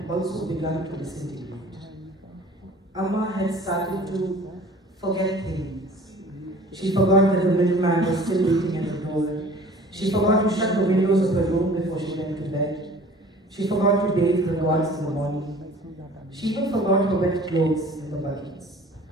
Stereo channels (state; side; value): normal; both; correlation 0.47